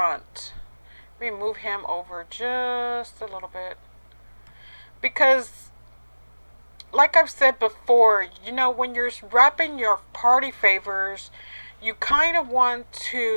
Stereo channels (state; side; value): inverted; both; correlation -1.00